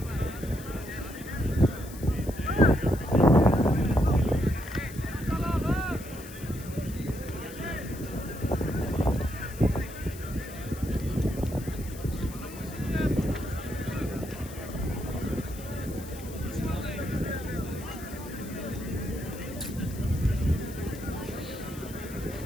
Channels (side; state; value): left; noise; hiss, 16 dB below the sound